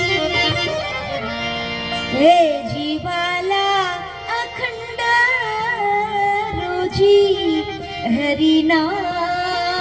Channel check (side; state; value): both; identical; correlation 1.00